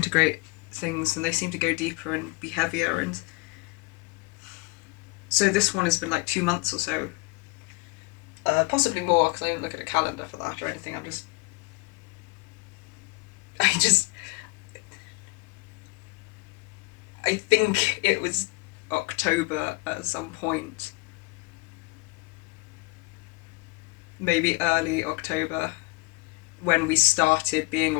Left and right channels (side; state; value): right; quieter; 25.9 dB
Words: things and they seem to go deeper and be heavier. And so this one has been like 2 months or so. Possibly more, because I didn't look at a calendar for that or anything. I think it was October at some point. Maybe early October, when we started being